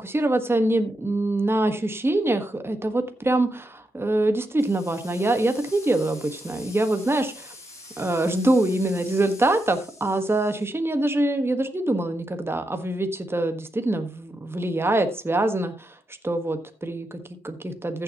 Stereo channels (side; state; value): both; normal; correlation 0.85